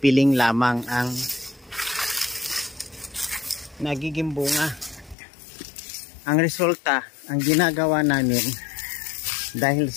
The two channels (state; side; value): drops out; right; at 5.2 s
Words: lamang ang nagiging bunga. Ang resulta, ang ginagawa namin, dahil